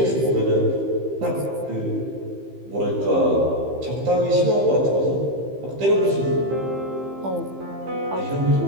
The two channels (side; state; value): left; late; 15 ms